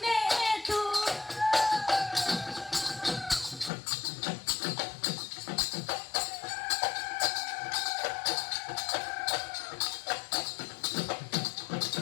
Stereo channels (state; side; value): drops out; right; at 3.7 s